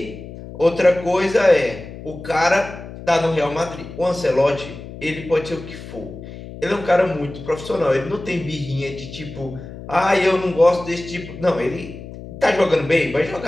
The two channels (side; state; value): left; noise; hum, 13 dB below the sound